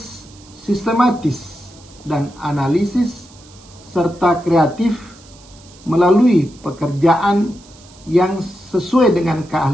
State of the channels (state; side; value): noise; right; hiss, 24 dB below the sound